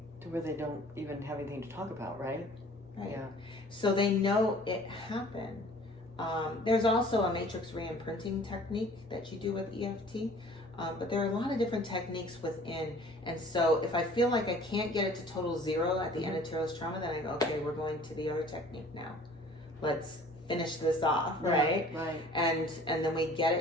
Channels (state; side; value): normal; both; correlation 0.50